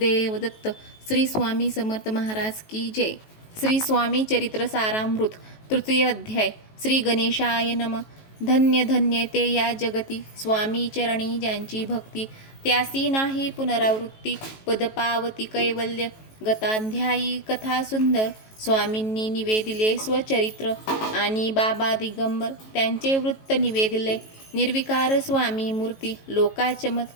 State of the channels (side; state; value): right; late; 18 ms